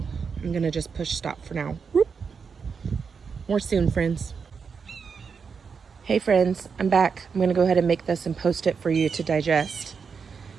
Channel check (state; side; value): quieter; left; 5.8 dB